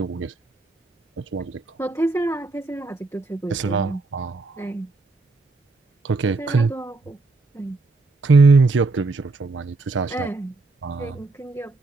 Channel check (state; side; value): quieter; left; 3.6 dB